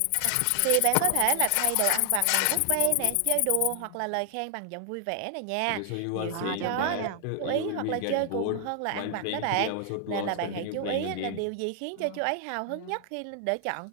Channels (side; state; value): both; different; correlation 0.00